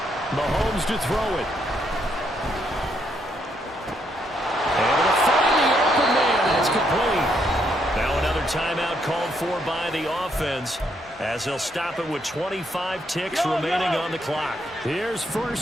Mahomes to throw it. Able to find the open man. That's complete. Now another timeout called for by the offense as they'll stop it with 25 ticks remaining on the clock. Here's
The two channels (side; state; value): both; normal; correlation 0.75